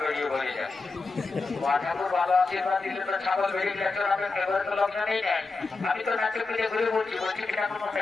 বেরিয়ে বলে যায়। ঠাকুর ভালো আশীর্বাদ দিলে তো ছাগল বেরিয়ে গেছে, এবারে তো লক্ষণ নেই নেয়। আমি তো নাচে পিঠে ঘুরে বলছি কি ঠাকুর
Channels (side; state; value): right; quieter; 3.9 dB